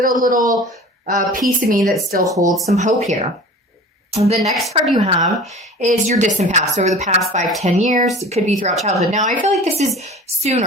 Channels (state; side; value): normal; both; correlation 0.40